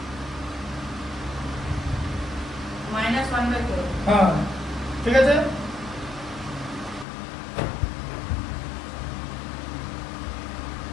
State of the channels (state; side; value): drops out; right; at 7.1 s